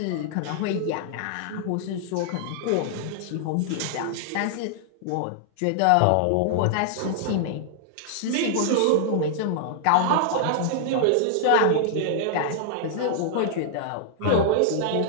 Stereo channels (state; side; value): different; both; correlation -0.01